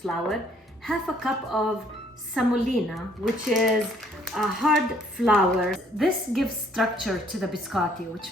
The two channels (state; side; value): normal; both; correlation 0.63